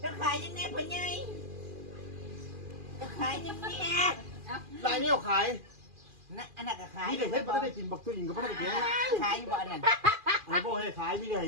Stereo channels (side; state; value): left; late; 2.4 ms